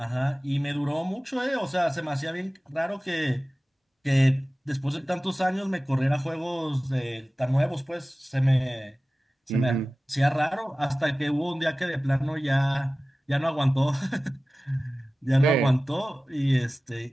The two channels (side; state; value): both; normal; correlation 0.97